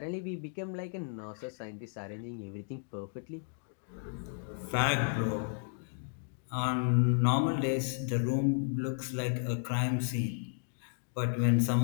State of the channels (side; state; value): right; silent; digital silence